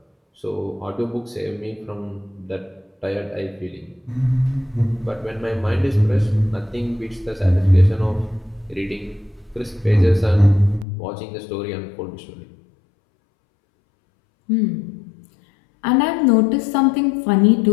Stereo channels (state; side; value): drops out; right; at 10.9 s